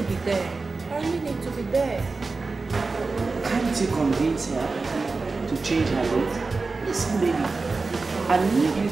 be there. I really need to be there. Can't you convince her to change her date? Listen, baby, I need you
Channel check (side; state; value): left; quieter; 3.9 dB